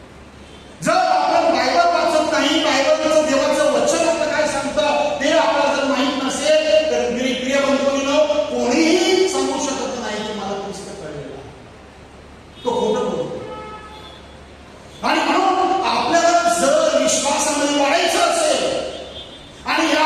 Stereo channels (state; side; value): identical; both; correlation 1.00